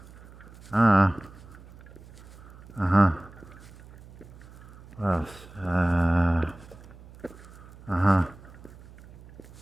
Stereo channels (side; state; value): right; noise; hum, 20 dB below the sound